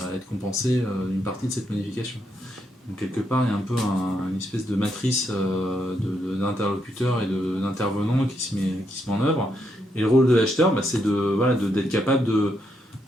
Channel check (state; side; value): normal; both; correlation 0.79